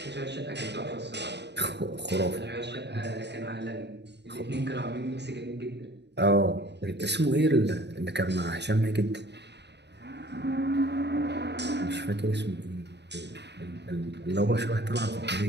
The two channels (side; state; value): left; late; 0.50 ms